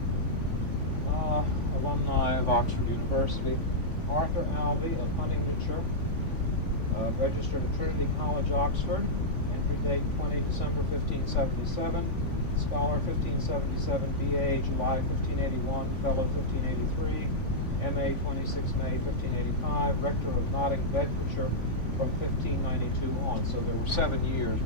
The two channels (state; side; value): late; right; 3.5 ms